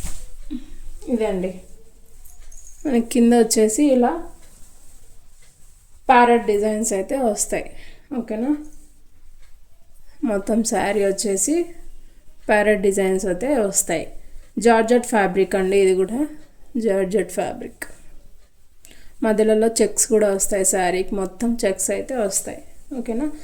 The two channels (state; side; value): identical; both; correlation 1.00